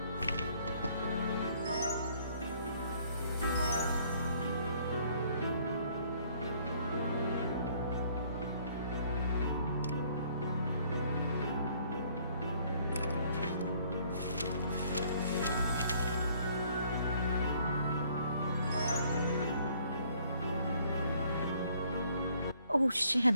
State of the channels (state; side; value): inverted; both; correlation -0.62